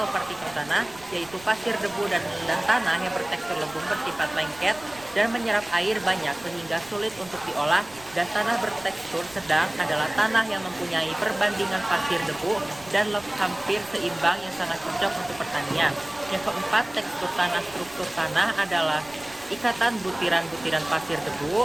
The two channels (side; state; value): right; noise; rumble, 23 dB below the sound